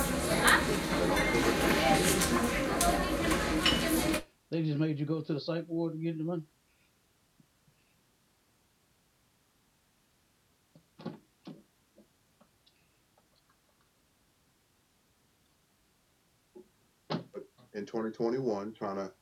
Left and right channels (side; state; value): both; identical; correlation 1.00